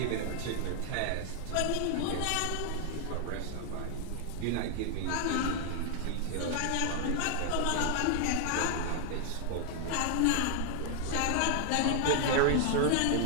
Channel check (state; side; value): different; both; correlation 0.00